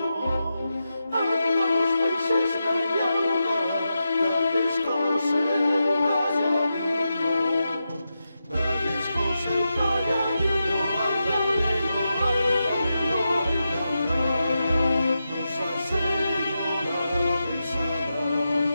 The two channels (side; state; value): both; inverted; correlation -0.89